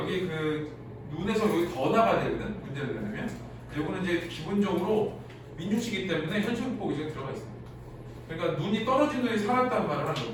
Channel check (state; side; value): identical; both; correlation 1.00